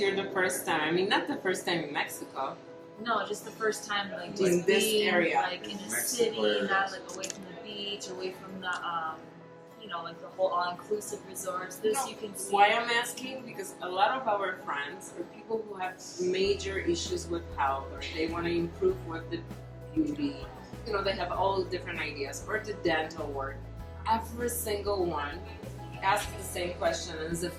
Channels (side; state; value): both; identical; correlation 1.00